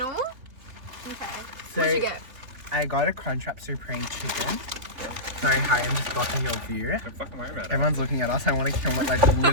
Okay. So, What'd you get? I got a Crunchwrap Supreme Chicken. Sorry, hi, I'm just blocking your view. Don't fucking worry about it. Everyone's looking at us. I want to kill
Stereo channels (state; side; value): late; left; 3.3 ms